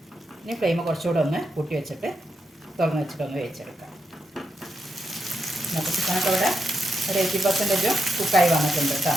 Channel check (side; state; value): both; normal; correlation 0.84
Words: ഇനി ഫ്ലെയിം കുറച്ചുകൂടെ ഒന്ന് കൂട്ടി വെച്ചിട്ട് തുറന്ന് വെച്ചിട്ടൊന്ന് വേവിച്ചെടുക്കാം. അപ്പോൾ ചിക്കനൊക്കെ ഇവിടെ ഒരു 80% കുക്കായി വന്നിട്ടുണ്ട് കേട്ടോ.